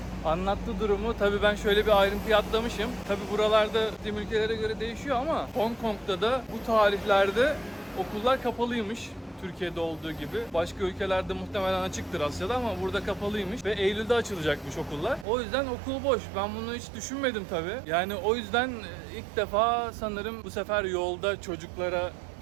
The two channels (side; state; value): left; drops out; at 15.2 s